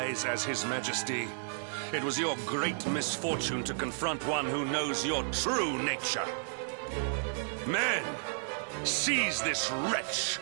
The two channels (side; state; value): left; silent; 56 dB below the other